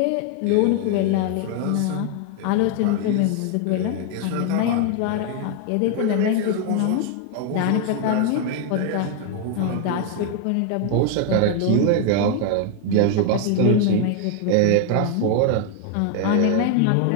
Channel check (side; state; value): both; different; correlation 0.00